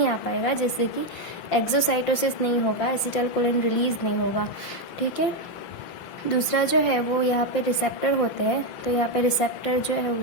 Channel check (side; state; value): right; late; 5.7 ms